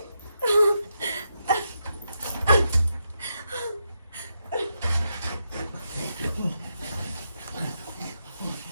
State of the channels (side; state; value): both; inverted; correlation -0.84